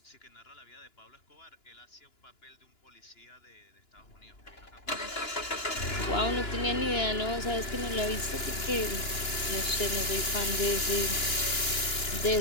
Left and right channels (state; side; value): late; right; 2.9 ms